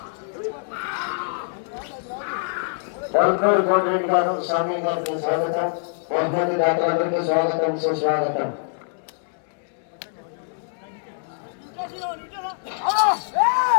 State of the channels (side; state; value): right; silent; 63 dB below the other